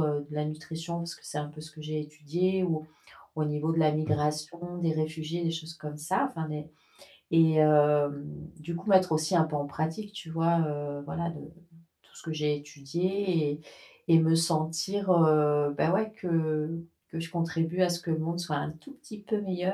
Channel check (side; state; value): both; identical; correlation 1.00